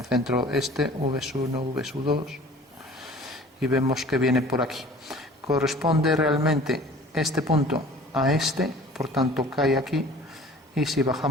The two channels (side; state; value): both; normal; correlation 0.47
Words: centro este, V1, V2, y vemos que viene por aquí. Corresponde realmente este punto a este, por tanto cae aquí, y si